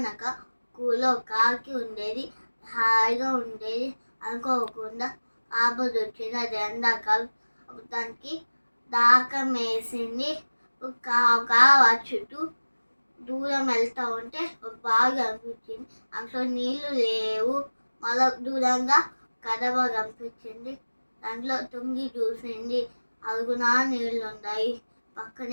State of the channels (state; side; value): inverted; both; correlation -1.00